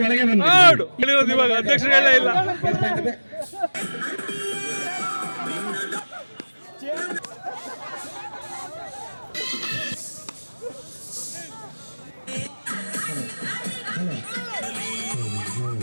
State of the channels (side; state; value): both; inverted; correlation -1.00